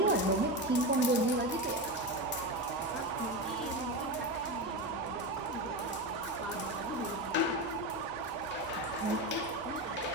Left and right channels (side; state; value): both; normal; correlation 0.18